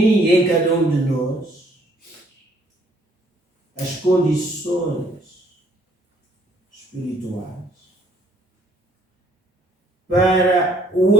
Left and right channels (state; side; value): normal; both; correlation 0.65